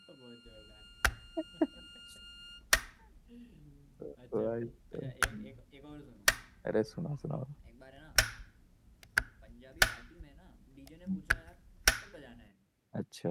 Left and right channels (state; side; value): identical; both; correlation 1.00